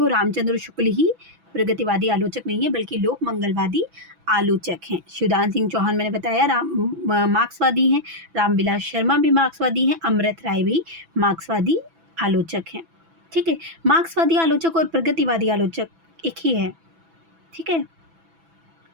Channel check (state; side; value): late; left; 6.0 ms